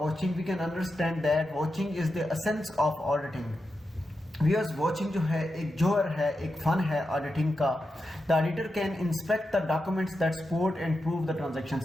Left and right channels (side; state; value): both; normal; correlation 0.89